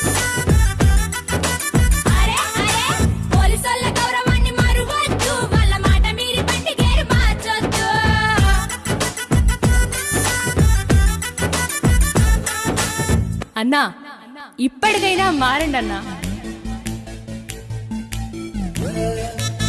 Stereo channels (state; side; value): identical; both; correlation 1.00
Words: అరే అరే పోలీసోళ్ళ గౌరవాన్ని మరువద్దు, వాళ్ళ మాట మీరి బండి గేరు మార్చొద్దు. అన్నా ఇప్పటికైనా మారండి అన్నా.